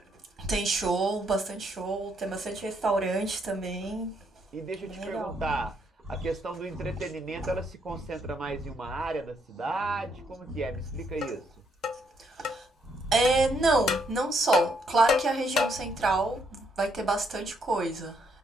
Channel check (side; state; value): both; normal; correlation 0.74